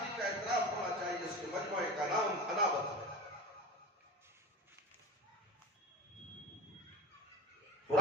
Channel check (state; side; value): normal; both; correlation 0.31